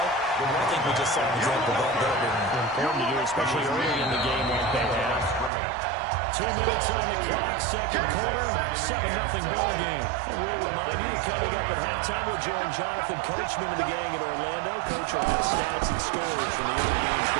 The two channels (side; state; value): left; drops out; at 5.5 s